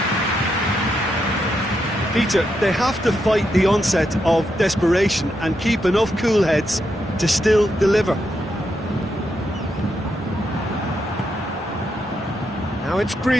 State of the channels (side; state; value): both; normal; correlation 0.82